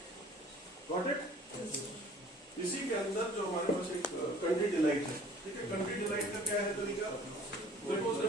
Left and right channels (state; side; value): normal; both; correlation 0.51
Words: Got it? इसी के अंदर जो हमारे पास एक कंट्री डिलाइट है, ठीक है। कंट्री डिलाइट का क्या है तरीका? देखो उसने